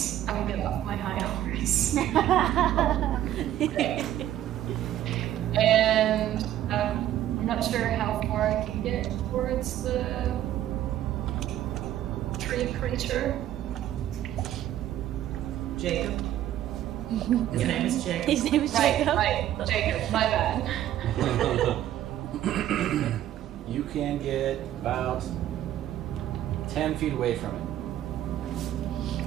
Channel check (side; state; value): left; quieter; 12.4 dB